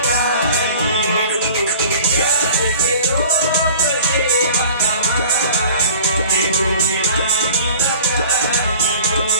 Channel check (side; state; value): both; inverted; correlation -0.44